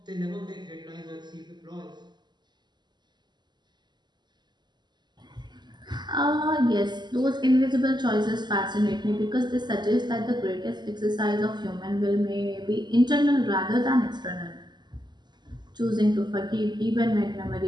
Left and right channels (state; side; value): late; left; 0.21 ms